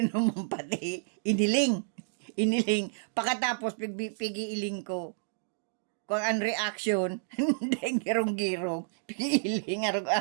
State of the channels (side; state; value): left; silent; digital silence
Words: pati. Iniling. Pagkatapos, pigiiling ko. Kung ang reaction, hindi girong-girong. Pigiiling,